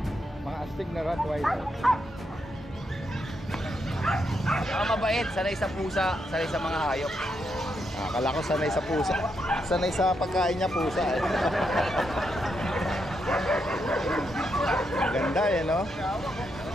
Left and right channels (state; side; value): normal; both; correlation 0.81